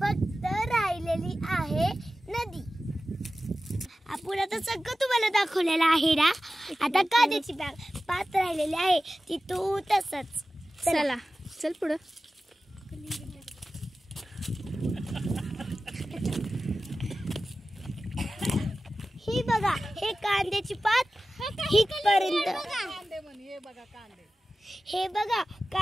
राहिलेली आहे नदी. आपण आता सगळं तुम्हाला दाखवलेलं आहे ना. आता कांद्याची बाग पात राहिलेली आहे ती तू तसंच. चला चल पुढं. ही बघा, हे कांद्याची पात हितपर्यंत. हे बघा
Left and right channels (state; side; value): normal; both; correlation 0.95